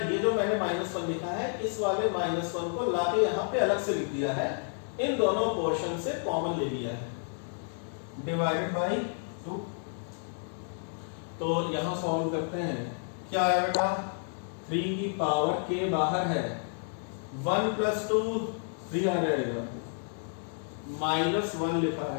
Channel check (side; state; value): right; silent; 57 dB below the other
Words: जो मैंने -1 लिखा है, इस वाले -1 को लाके यहां पे अलग से लिख दिया है, इन दोनों पोर्शन से कॉमन ले लिया है, डिवाइडेड बाय 2। तो यहां सॉल्व करते हैं, क्या है बेटा? 3 की पावर k बाहर है, 1 + 2 3 आ जाएगा, -1 लिखा